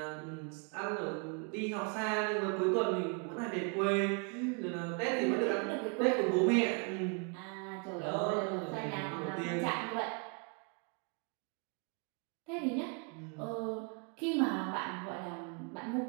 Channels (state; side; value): quieter; left; 36.3 dB